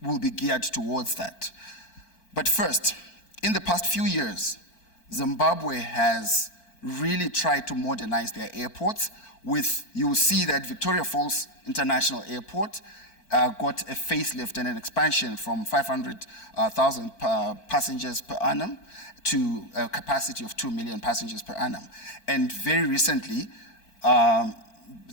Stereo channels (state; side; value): late; right; 4.5 ms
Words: will be geared towards that. But first, in the past few years, Zimbabwe has really tried to modernize their airports you will see that Victoria Falls International Airport got a facelift and an expansion from 500,000 passengers per annum to a capacity of 2 million passengers per annum. And very recently, Harare,